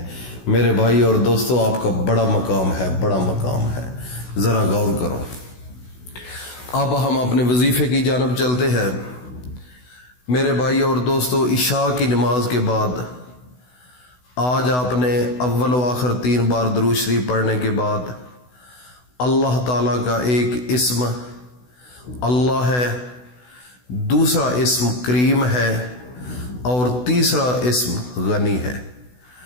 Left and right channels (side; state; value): right; late; 16 ms